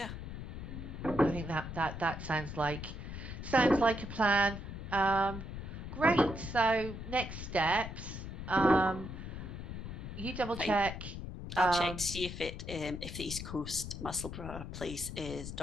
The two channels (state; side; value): noise; left; rumble, 8 dB below the sound